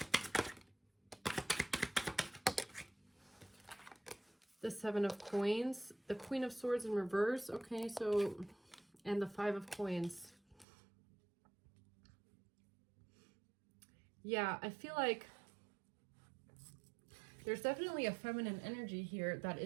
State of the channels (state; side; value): drops out; left; at 10.7 s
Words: The Seven of Coins, the Queen of Swords in reverse. Okay, so, and the Five of Coins. Yeah, I feel like there's definitely a feminine energy here that